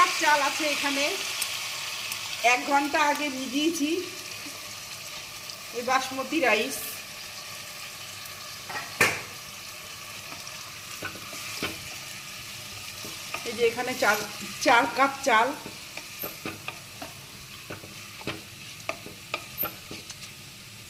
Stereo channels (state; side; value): identical; both; correlation 1.00